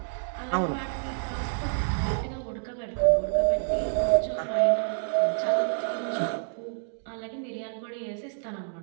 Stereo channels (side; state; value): left; silent; digital silence